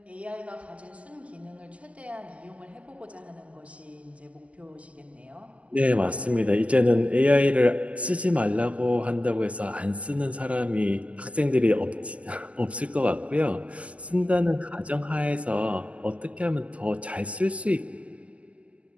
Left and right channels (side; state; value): left; late; 0.065 ms